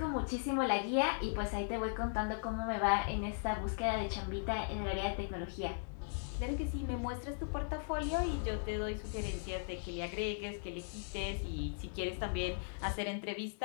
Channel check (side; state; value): right; silent; digital silence